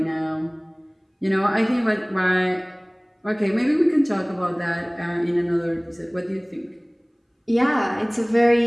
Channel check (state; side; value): identical; both; correlation 1.00